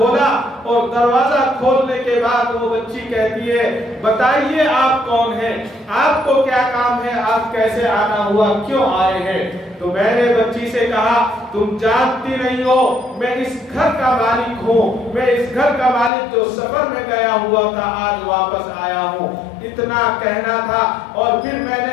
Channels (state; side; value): drops out; right; at 16.1 s